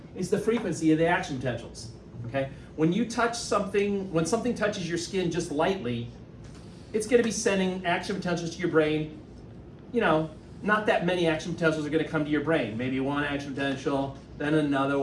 is the frequency of the action potentials, okay? When you touch something, when something touches your skin just lightly, it's gonna be sending action potentials to your brain. Not that many action potentials are gonna come to your brain. Maybe 1 action potential, then another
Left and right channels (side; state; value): both; identical; correlation 1.00